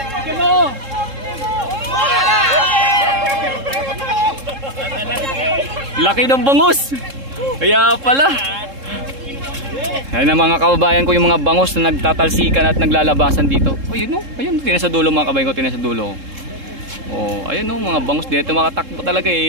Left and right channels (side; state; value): left; late; 3.7 ms